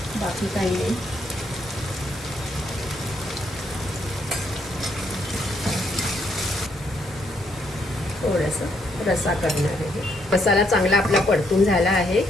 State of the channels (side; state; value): both; normal; correlation 0.73